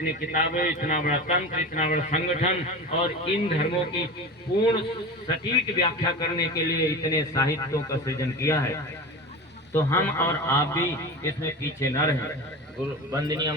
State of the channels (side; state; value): both; normal; correlation 0.29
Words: किताबें, इतना बड़ा तंत्र, इतना बड़ा संगठन और इन धर्मों की पूर्ण सटीक व्याख्या करने के लिए इतने साहित्यों का सृजन किया है। तो हम और आप भी इसमें पीछे न रहें। वंदनीय